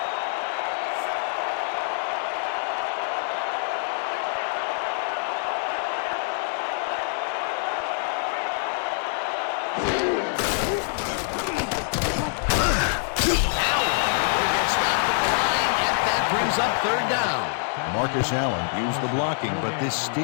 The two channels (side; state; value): right; silent; 62 dB below the other